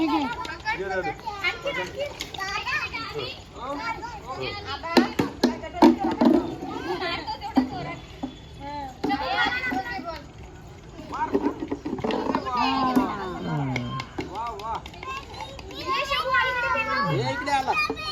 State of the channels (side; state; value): both; identical; correlation 1.00